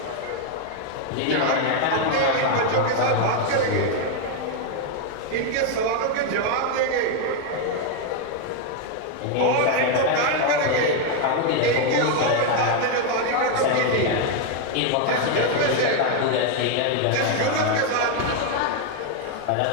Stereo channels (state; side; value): different; both; correlation 0.01